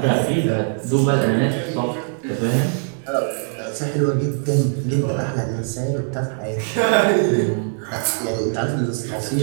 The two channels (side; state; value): left; silent; 65 dB below the other